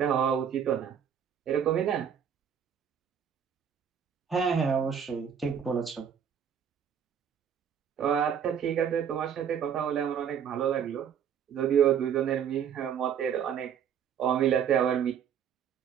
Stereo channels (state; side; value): quieter; left; 8.2 dB